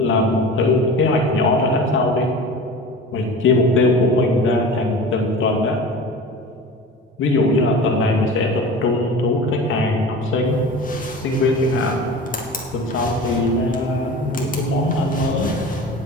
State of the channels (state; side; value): normal; both; correlation 0.35